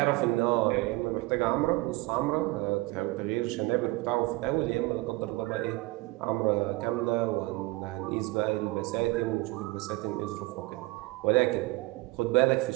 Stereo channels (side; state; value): left; quieter; 21.9 dB